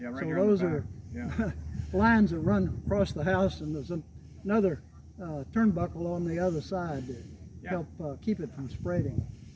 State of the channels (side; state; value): both; identical; correlation 1.00